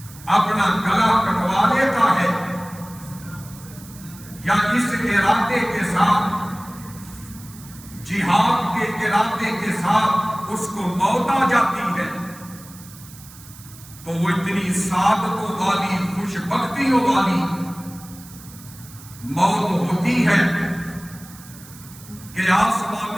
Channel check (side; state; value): right; noise; hiss, 19 dB below the sound